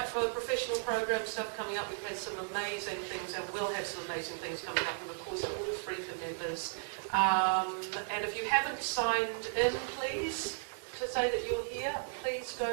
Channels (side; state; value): left; silent; digital silence